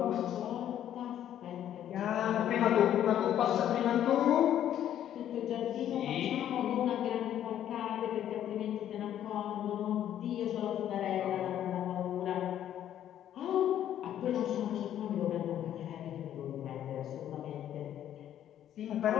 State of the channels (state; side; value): quieter; right; 10.9 dB